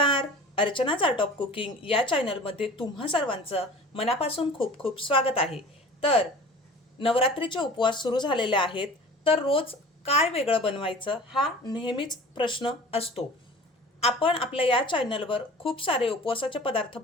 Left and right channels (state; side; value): normal; both; correlation 0.42